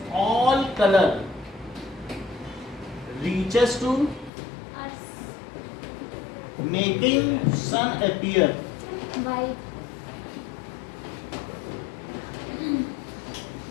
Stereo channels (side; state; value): right; drops out; at 4.3 s